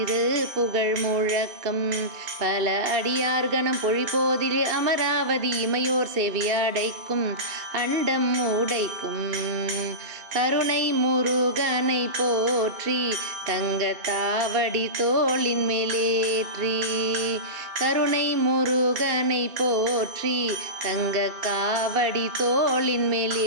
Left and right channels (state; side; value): late; left; 2.7 ms